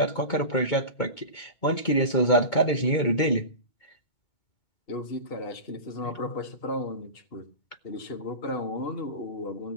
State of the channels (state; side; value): late; right; 2.2 ms